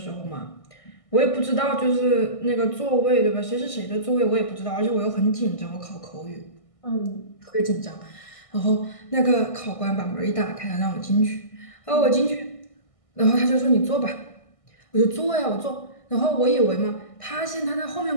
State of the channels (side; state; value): right; late; 1.6 ms